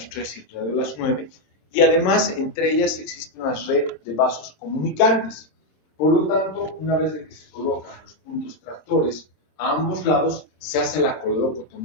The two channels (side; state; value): right; late; 26 ms